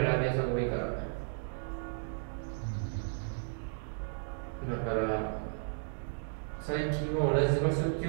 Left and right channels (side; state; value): left; silent; digital silence